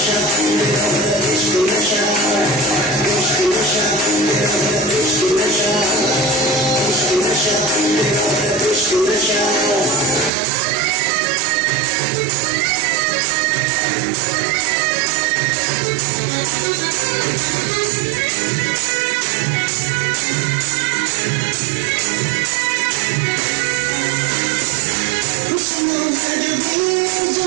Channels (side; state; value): left; drops out; at 10.3 s